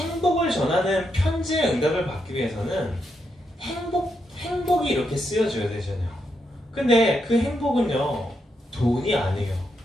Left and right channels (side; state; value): both; normal; correlation 0.81